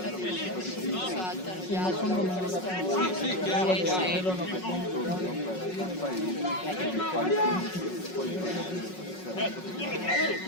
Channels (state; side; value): late; right; 5.4 ms